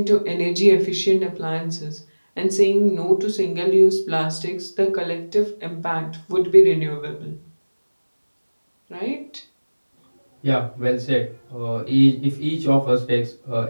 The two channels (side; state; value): both; inverted; correlation -1.00